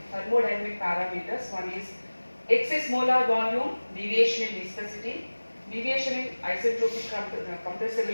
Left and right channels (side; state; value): both; inverted; correlation -1.00